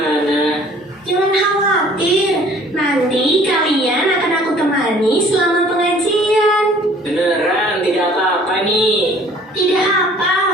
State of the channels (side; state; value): both; normal; correlation 0.54